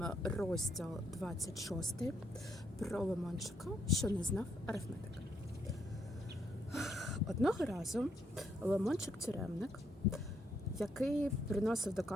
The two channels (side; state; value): both; normal; correlation 0.74